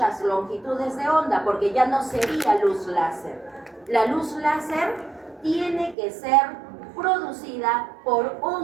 longitudes de onda porque ya no sería luz láser. La luz láser tiene que ser producida por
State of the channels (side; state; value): left; drops out; at 6.0 s